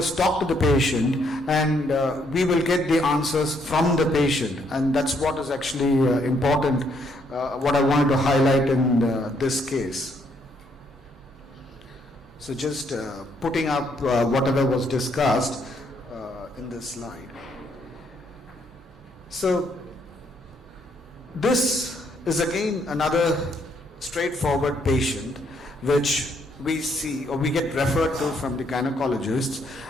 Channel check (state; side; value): normal; both; correlation 0.71